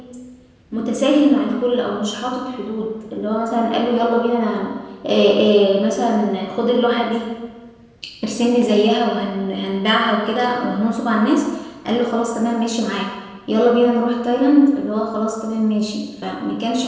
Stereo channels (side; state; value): both; identical; correlation 1.00